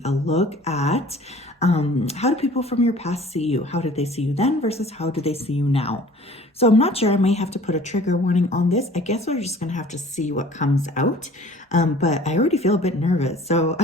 a look at how do people from your past see you? How did they see you then versus how do they see you now? So I'm not sure. I may have to put a trigger warning on this. I guess we're just going to have to see what comes out. But I already feel a bit nervous. So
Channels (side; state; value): both; normal; correlation 0.49